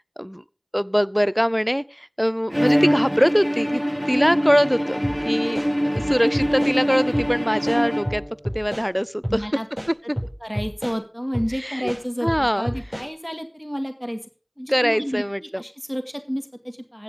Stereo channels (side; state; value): both; identical; correlation 1.00